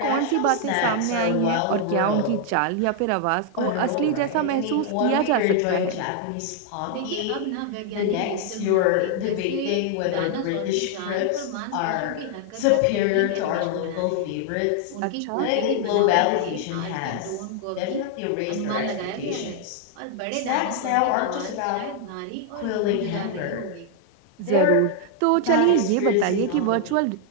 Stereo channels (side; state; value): both; different; correlation 0.00